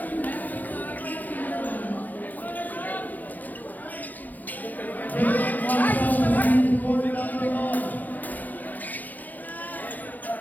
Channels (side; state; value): right; late; 0.083 ms